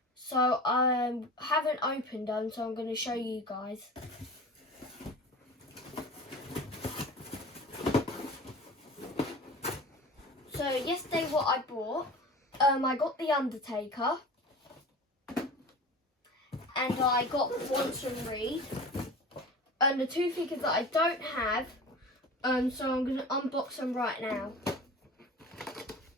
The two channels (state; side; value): normal; both; correlation 0.36